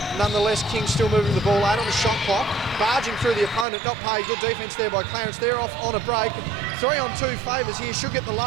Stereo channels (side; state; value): left; drops out; at 3.7 s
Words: Nonetheless, Kings still moving the ball out on the shot clock. Barging through the opponent. Not paid. Good defence there by Clarence. They're off on a break. 3-on-2 favours here. Should get the